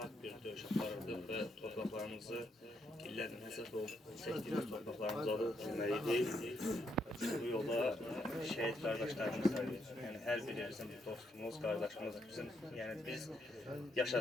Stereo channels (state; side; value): normal; both; correlation 0.77